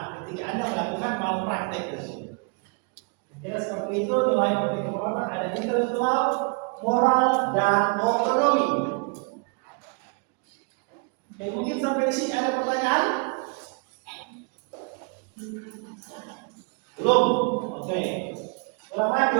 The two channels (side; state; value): left; quieter; 34.5 dB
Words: Ketika Anda melakukan malpraktek tersebut. Kira seperti itu nilai etika perawatan ada intelektual, moral, dan otonomi. Oke, mungkin sampai di sini ada pertanyaan? Belum? Oke. Ulang